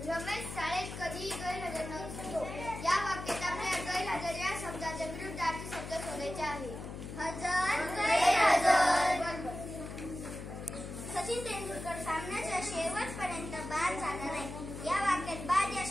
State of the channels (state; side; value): noise; left; hum, 9 dB below the sound